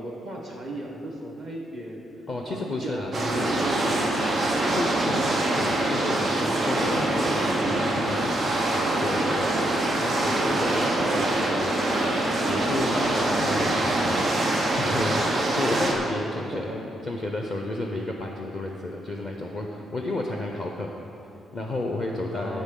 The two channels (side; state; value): both; normal; correlation 0.78